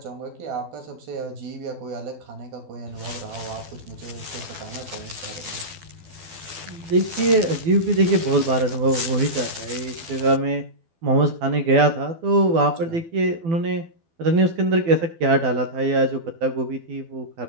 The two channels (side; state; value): left; late; 12 ms